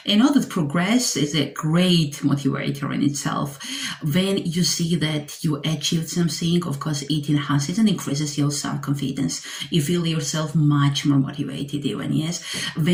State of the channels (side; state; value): both; identical; correlation 1.00